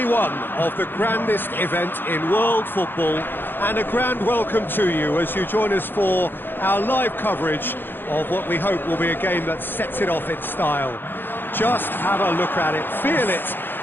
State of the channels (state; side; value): late; right; 0.098 ms